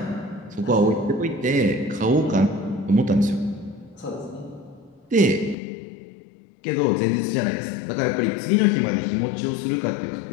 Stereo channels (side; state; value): right; drops out; at 5.6 s